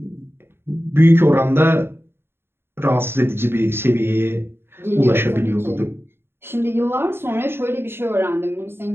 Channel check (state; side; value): late; left; 0.11 ms